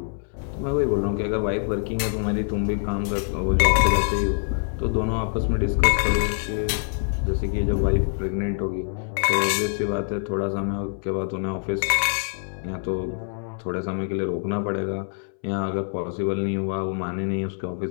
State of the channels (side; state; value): right; silent; 62 dB below the other